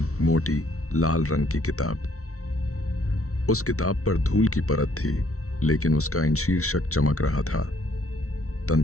मोटी, लाल रंग की किताब। उस किताब पर धूल की परत थी, लेकिन उसका इन शीर्षक चमक रहा था,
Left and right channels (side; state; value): right; late; 0.64 ms